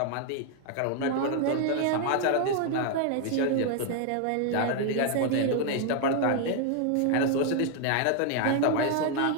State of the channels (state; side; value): different; both; correlation 0.00